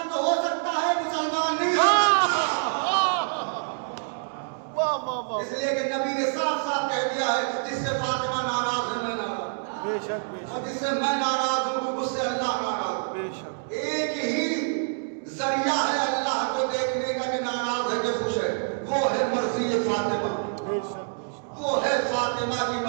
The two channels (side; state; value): left; silent; digital silence